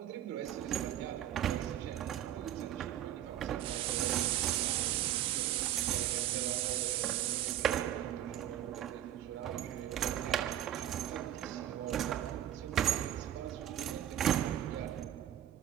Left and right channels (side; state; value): left; quieter; 11.7 dB